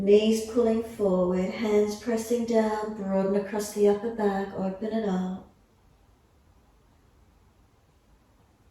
pulling forward, hands pressing down, broaden across the upper back, open it up.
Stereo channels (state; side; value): identical; both; correlation 1.00